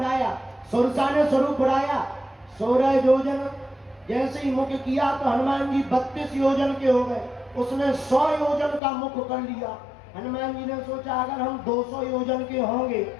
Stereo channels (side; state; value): right; drops out; at 8.8 s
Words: सुरसा ने स्वरूप बढ़ाया 16 योजन। जैसे ही मुख किया तो हनुमान जी 32 योजन के हो गए। उसने 100 योजन का मुख कर लिया। हनुमान जी ने सोचा अगर हम 200 योजन के होंगे